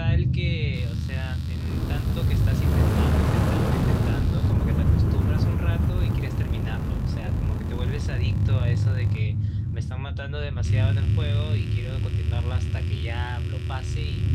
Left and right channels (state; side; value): identical; both; correlation 1.00